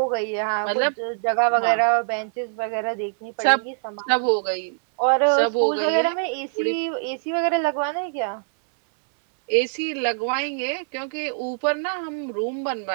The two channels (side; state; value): left; silent; 63 dB below the other